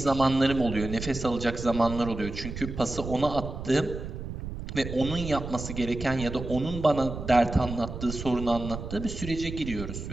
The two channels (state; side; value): noise; right; rumble, 8 dB below the sound